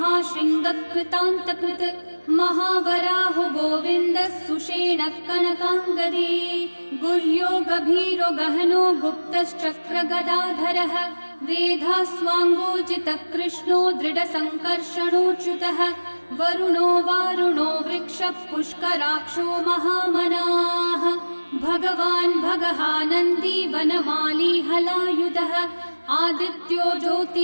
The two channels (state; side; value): inverted; both; correlation -1.00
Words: महावराहो गोविन्दः सुषेणः कनकाङ्गदी गुह्यो गभीरो गहनो गुप्तश्चक्रगदाधरः वेधास्वाङ्गोजितः कृष्णो दृढसङ्कर्षणोच्युतः वरुणो वारुणो वृक्षः पुष्कराक्षो महामनाः भगवान् भगहानन्दी वनमाली हलायुधः आदित्यो